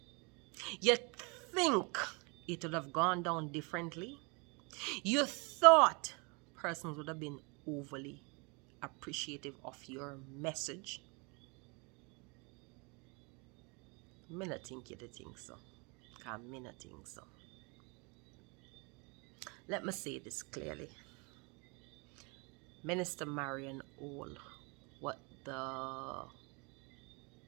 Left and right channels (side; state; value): left; quieter; 30.9 dB